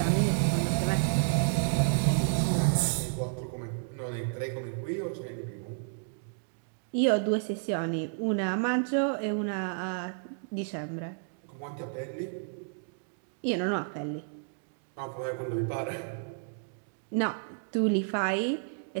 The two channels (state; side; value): silent; left; digital silence